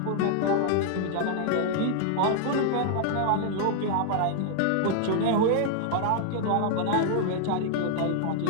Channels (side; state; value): both; different; correlation 0.00